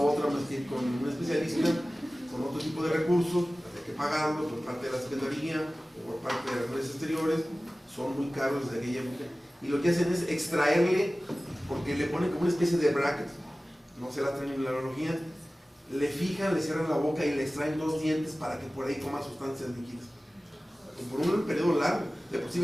otra más que ir con un especialista, con otro tipo de recursos, hay que pagarlo por parte de la Secretaría o por parte de las redes exteriores, son muy caros desde aquella época. Y lo que hacen es extraerle, porque le ponen como una especie de bracket, no sé la terminología, le fijan, le cierran la boca y le extraen 2 dientes para que por ahí coma sustancias líquidas. Por un periodo largo, de por sí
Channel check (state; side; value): normal; both; correlation 0.97